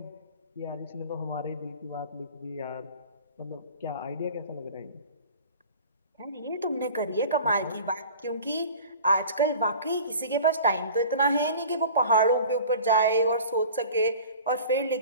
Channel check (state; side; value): inverted; both; correlation -0.42